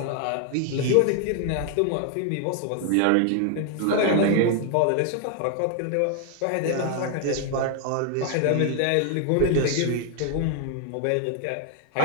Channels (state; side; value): different; both; correlation 0.01